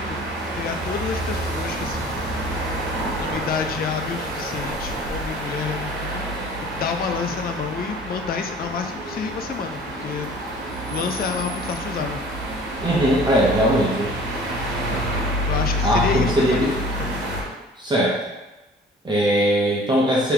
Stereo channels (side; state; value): both; normal; correlation 0.47